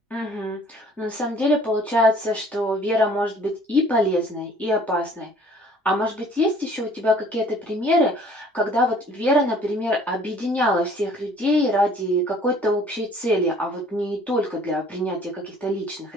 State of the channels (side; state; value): both; normal; correlation 0.54